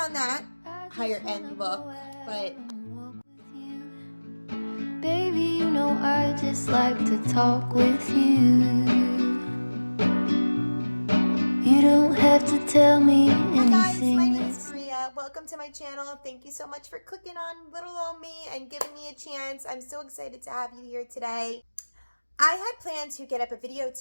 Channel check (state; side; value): inverted; both; correlation -1.00